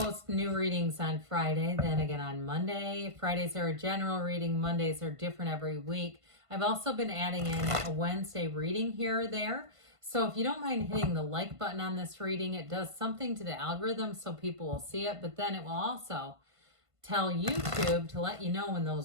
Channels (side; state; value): left; late; 1.5 ms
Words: new readings on Friday, then again on Monday. Fridays are a general reading, Mondays are different every week. I've also been adding in a Wednesday reading here or there. So if you don't mind hitting the like button on this reading, it does something to the algorithm so people will see it, but then it will also tell YouTube to let you know when